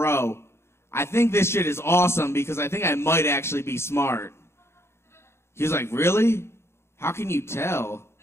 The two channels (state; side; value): late; right; 0.12 ms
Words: I think this shit is awesome because I think I might actually be smart. He was like, really? How can you tell?